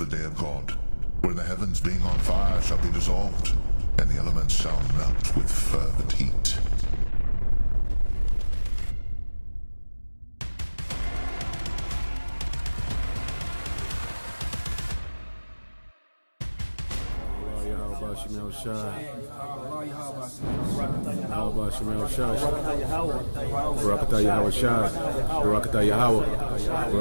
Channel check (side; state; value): both; inverted; correlation -1.00